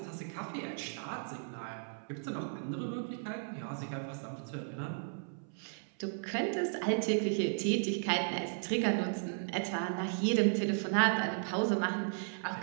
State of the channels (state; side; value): silent; left; 54 dB below the other